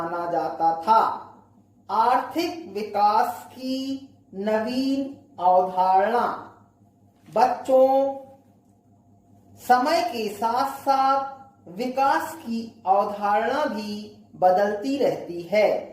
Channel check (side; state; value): both; identical; correlation 1.00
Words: जाता था। आर्थिक विकास की नवीन अवधारणा। बच्चों, समय के साथ साथ विकास की अवधारणा भी बदलती रहती है।